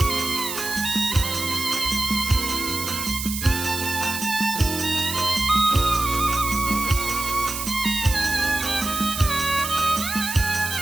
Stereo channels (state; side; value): noise; right; hiss, 5 dB below the sound